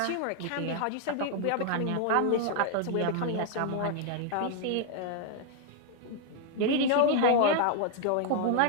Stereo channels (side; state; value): both; different; correlation 0.00